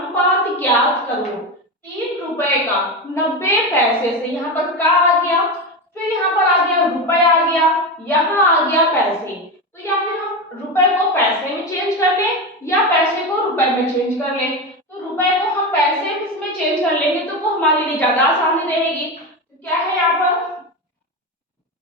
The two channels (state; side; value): normal; both; correlation 0.18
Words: ज्ञात करो। 3 रुपए का 90 पैसे से, यहाँ पर का आ गया, फिर यहाँ पर आ गया रुपए आ गया, यहाँ आ गया पैसे। तो या फिर हम रुपए को पैसे में चेंज कर लें या पैसे को रुपए में चेंज कर लें। तो रुपए को हम पैसे में चेंज कर लेंगे तो वो हमारे लिए ज्यादा आसानी रहेगी। तो क्या है यहाँ पर